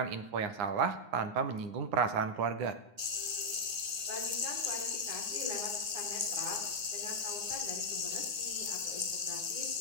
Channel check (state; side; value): late; left; 9.7 ms